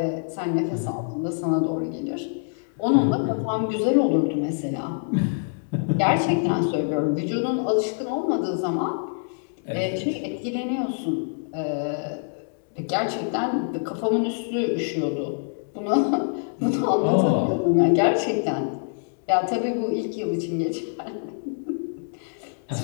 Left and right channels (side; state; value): right; silent; digital silence